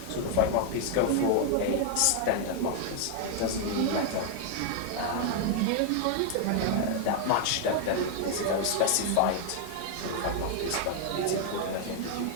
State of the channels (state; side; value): different; both; correlation 0.00